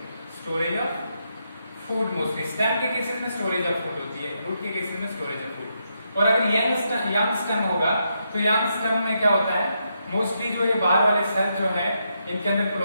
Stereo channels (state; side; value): inverted; both; correlation -0.81